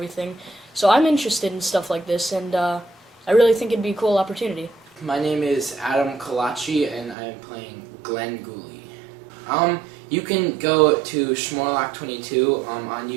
So I'm interested in stuff like this, and I really think it'd be a cool opportunity. My name is Adam Kalachi, and I am playing Glenn Gooley. You can go to Schmorlock22 on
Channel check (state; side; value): drops out; left; at 7.2 s